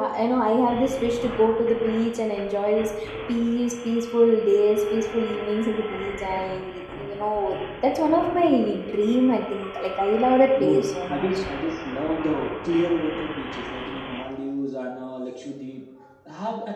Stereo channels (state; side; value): identical; both; correlation 1.00